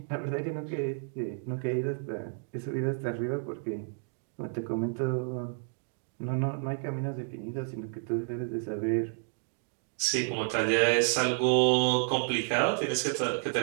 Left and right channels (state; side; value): silent; left; 56 dB below the other